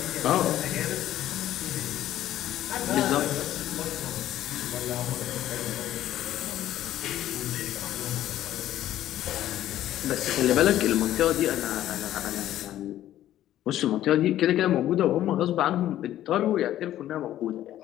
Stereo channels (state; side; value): quieter; right; 12.8 dB